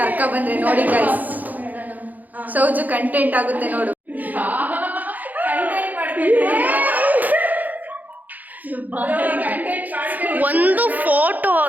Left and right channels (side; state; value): left; late; 0.082 ms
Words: ಬಂದ್ರೆ ನೋಡಿ ಗೈಸ್. ಸೌಜು ಕಂಟೆಂಟ್ ಆಗುತ್ತೆ ನೋಡು. ಒಂದು ಫೋಟೋ